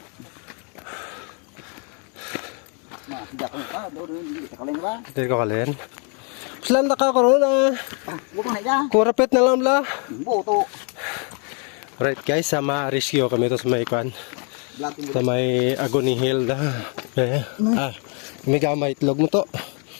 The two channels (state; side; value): quieter; right; 38.4 dB